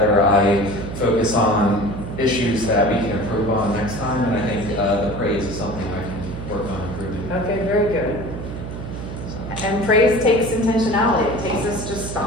I focus on issues that we can improve on next time, and I think the praise is something I can work on improving. Okay, very good. And praise takes intentionality. It takes us just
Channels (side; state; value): right; noise; hum, 8 dB below the sound